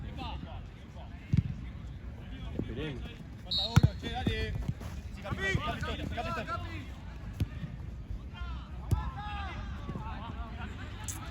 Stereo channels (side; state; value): both; identical; correlation 1.00